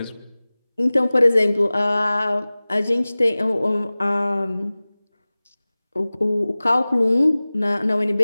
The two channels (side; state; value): both; inverted; correlation -0.99